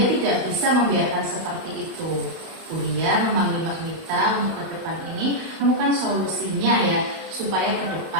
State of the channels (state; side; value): late; left; 32 ms